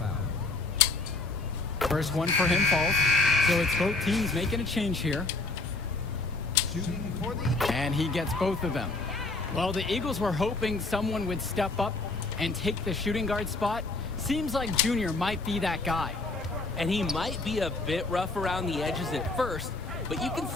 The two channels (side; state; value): right; quieter; 3.4 dB